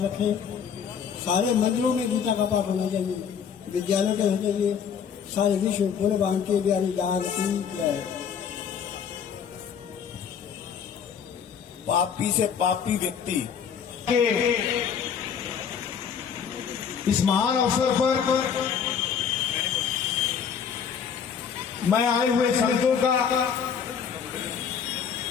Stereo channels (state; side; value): quieter; right; 7.3 dB